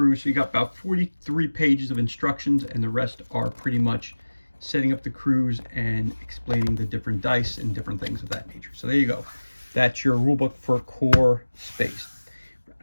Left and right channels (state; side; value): inverted; both; correlation -1.00